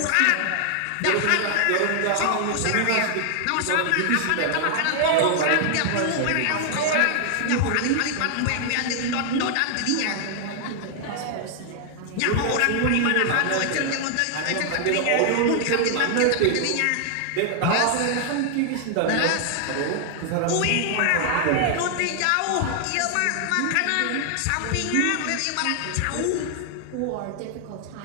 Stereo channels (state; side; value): different; both; correlation 0.00